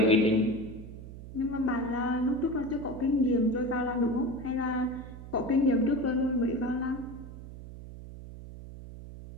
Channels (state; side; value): noise; right; hum, 13 dB below the sound